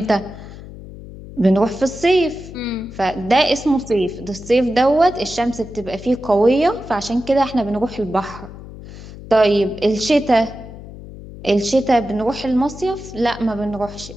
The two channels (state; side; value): noise; left; hum, 15 dB below the sound